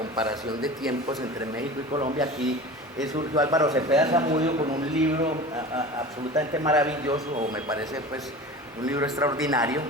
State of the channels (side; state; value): both; normal; correlation 0.35